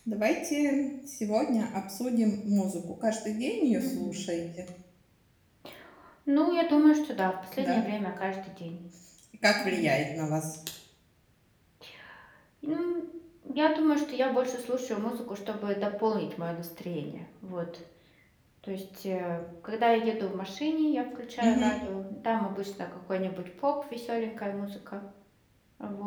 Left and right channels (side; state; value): both; identical; correlation 1.00